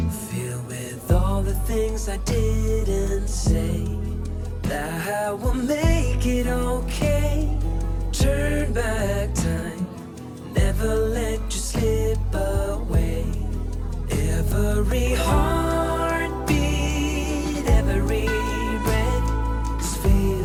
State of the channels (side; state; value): both; identical; correlation 1.00